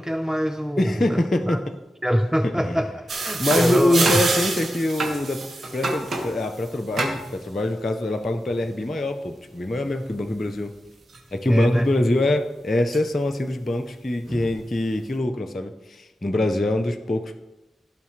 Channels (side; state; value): both; normal; correlation 0.90